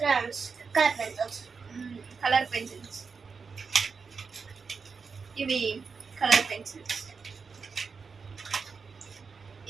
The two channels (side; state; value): left; quieter; 5.2 dB